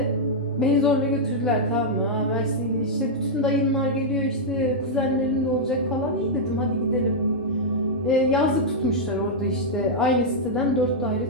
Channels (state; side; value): normal; both; correlation -0.06